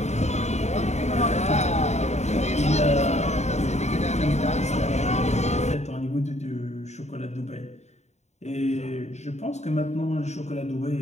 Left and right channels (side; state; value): right; late; 0.32 ms